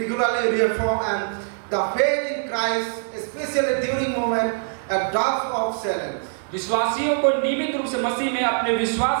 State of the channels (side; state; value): left; silent; digital silence